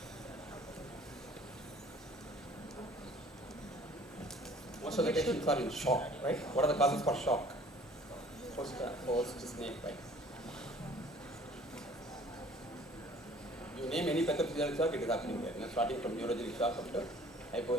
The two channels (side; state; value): both; normal; correlation 0.53